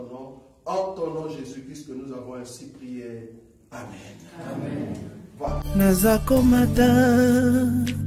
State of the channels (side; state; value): both; identical; correlation 1.00